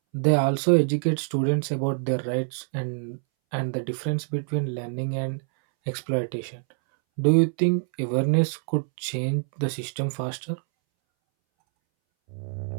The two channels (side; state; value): left; silent; 61 dB below the other